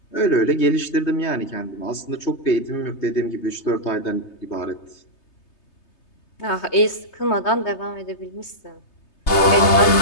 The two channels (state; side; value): late; right; 3.3 ms